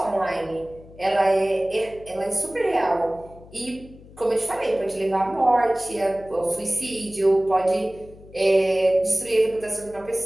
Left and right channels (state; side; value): noise; left; hum, 21 dB below the sound